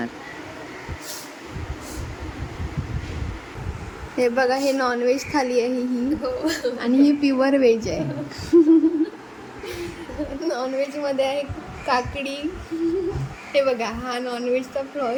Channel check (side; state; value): both; identical; correlation 1.00